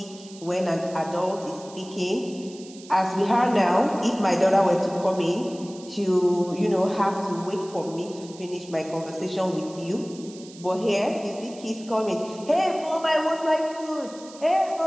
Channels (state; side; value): noise; right; hiss, 19 dB below the sound